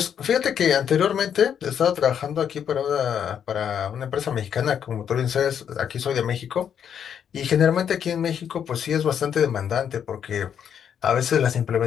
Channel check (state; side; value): quieter; right; 8.4 dB